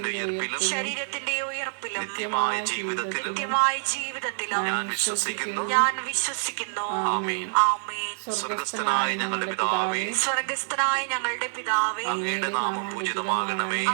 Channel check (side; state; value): left; silent; 60 dB below the other